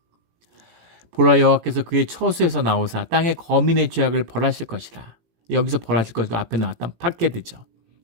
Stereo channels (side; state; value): left; late; 18 ms